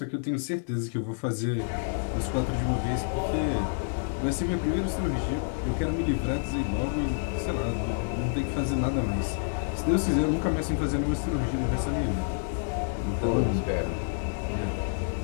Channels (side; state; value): right; silent; digital silence